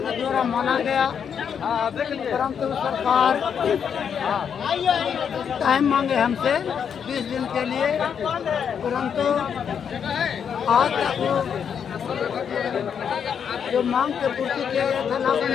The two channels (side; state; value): right; quieter; 7.5 dB